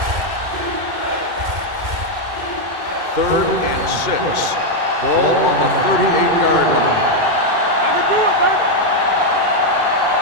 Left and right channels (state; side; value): late; left; 2.1 ms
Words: Third and 6. Ball on the 38-yard line. I can do it, baby.